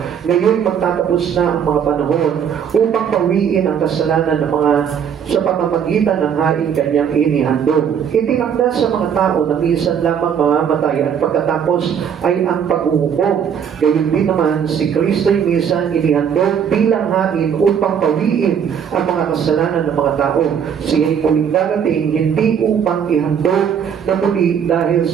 Ngayon magtatapos na ang mga panahon upang pawiin ang kasalanan ng mga sa pamamagitan ng haing kanyang inihandog. Itinakda sa mga tao na minsan lamang mamamatay at pagkatapos ay ang paghuhukom. Gayon din naman si Kristo'y minsan inihandog bilang hain upang pawiin ang mga kasalanan ng mga tao. Siya'y muling darating hindi upang ihandog na muli dahil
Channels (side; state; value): left; quieter; 7.9 dB